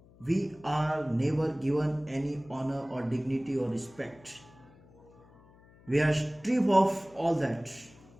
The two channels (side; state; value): left; noise; hum, 26 dB below the sound